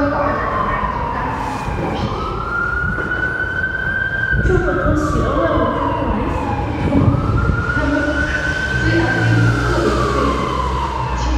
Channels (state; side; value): identical; both; correlation 1.00